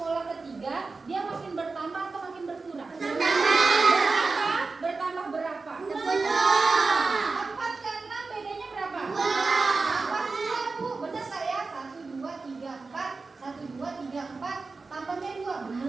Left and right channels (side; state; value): left; quieter; 4.0 dB